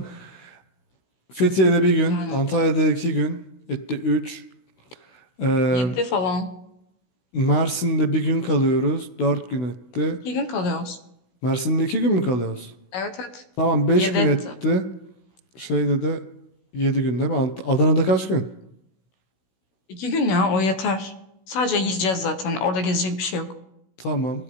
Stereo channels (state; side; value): late; right; 16 ms